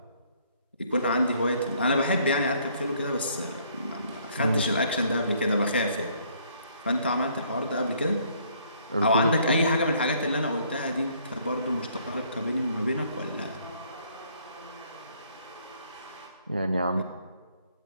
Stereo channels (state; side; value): inverted; both; correlation -0.64